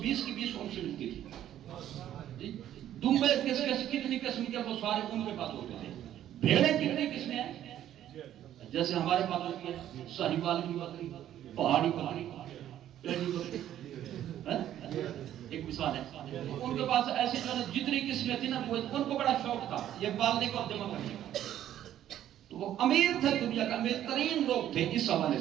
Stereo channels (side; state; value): left; quieter; 11.6 dB